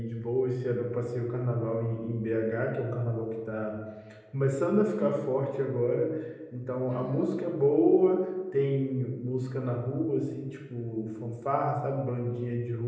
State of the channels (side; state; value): both; identical; correlation 1.00